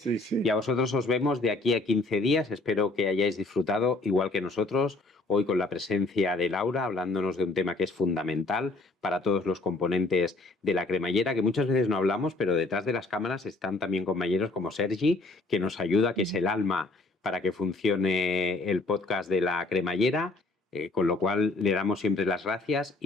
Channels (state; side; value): quieter; right; 3.2 dB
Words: sí. Y a vosotros os vemos de aquí a 15 días. Espero que hayáis disfrutado, igual que nosotros, hoy con la presencia de Laura, hablándonos de un tema que es fundamental para todos los componentes de la cremallera, que muchas veces no hablamos, pero detrás de las cámaras están también compañeros como Sergi, que nos ayuda, que es el alma para que funcione el podcast de la cremallera, con lo cual le damos siempre las gracias